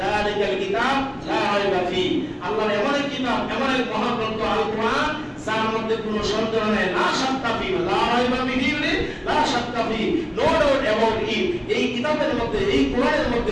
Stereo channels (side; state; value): both; identical; correlation 1.00